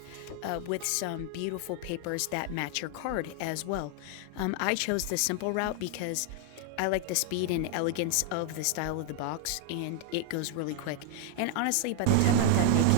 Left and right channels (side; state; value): both; different; correlation 0.00